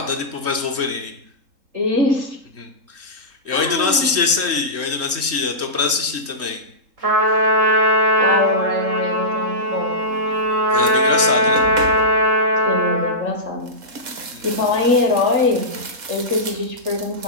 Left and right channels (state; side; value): late; left; 3.7 ms